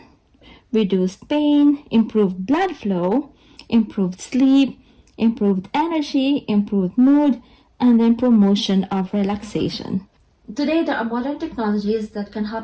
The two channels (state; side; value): identical; both; correlation 1.00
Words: reduced pain, improved blood flow, improved sleep, improved energy, improved mood, and then promotion of relaxation. Today, there are modern technologies that can